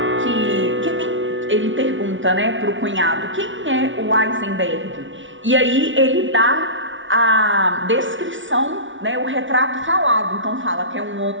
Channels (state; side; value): late; left; 0.56 ms